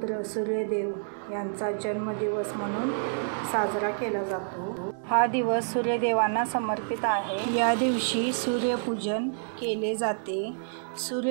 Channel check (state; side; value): silent; left; digital silence